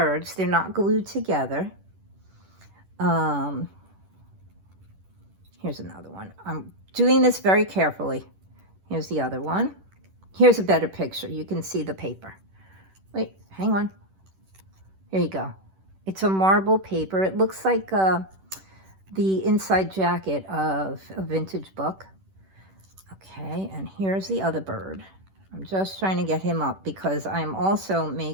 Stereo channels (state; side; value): late; left; 10 ms